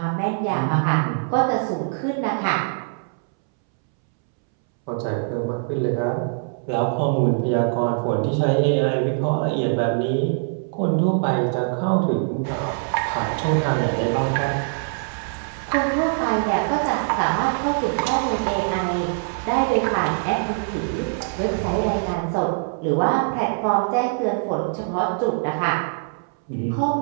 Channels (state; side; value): silent; left; 64 dB below the other